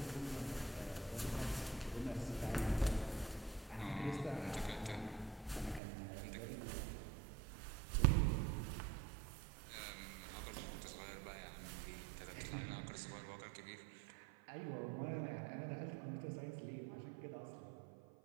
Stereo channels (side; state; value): left; drops out; at 5.8 s